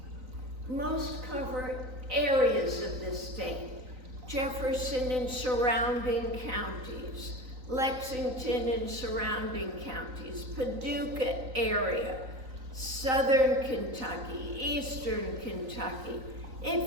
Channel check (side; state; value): left; late; 3.9 ms